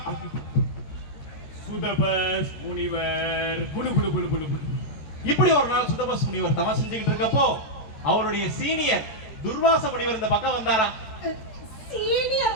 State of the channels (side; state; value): right; late; 14 ms